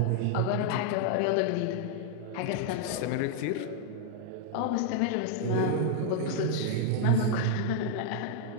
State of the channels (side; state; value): both; different; correlation -0.01